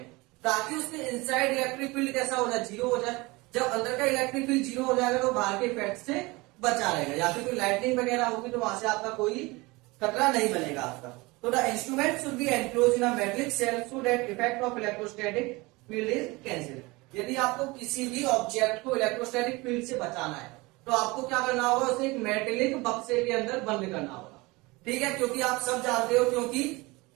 ताकि उसके इनसाइड इलेक्ट्रिक फील्ड कैसा हो जाए, जीरो हो जाए। जब अंदर का इलेक्ट्रिक फील्ड जीरो हो जाएगा तो बाहर के इफेक्ट से बचा रहेगा, या फिर कोई लाइटनिंग वगैरह होगी तो वहां से आपका कोई खतरा नहीं बनेगा आपका। तो the instrument should be enclose in a metallic shell so that effect of electrostatic field is cancel. यदि आपको किसी भी ऑब्जेक्ट को इलेक्ट्रोस्टैटिक फील्ड से बचाना है तो आपको क्या करना होगा, उसे एक मेटेलिक बक्से के अंदर बंद करना होगा। ठीक है, क्योंकि आप सब जानते हो, क्योंकि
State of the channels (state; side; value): quieter; left; 23.5 dB